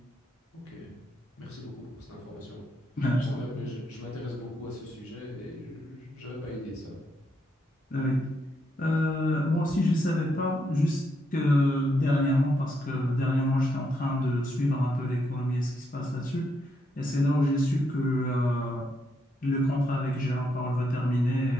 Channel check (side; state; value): both; normal; correlation 0.78